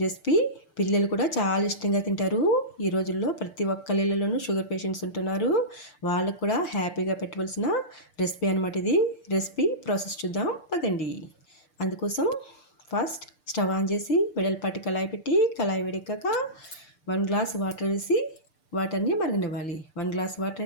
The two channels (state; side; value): late; right; 6.7 ms